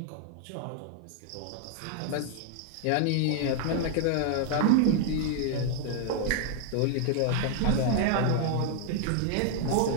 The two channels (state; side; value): different; both; correlation 0.00